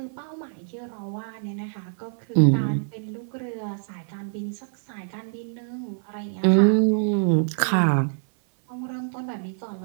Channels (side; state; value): left; silent; 57 dB below the other